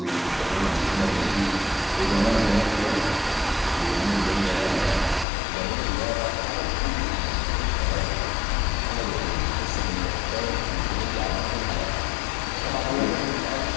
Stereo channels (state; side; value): drops out; right; at 5.2 s